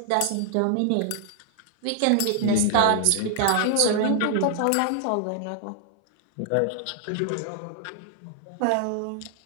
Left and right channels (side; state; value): both; different; correlation 0.00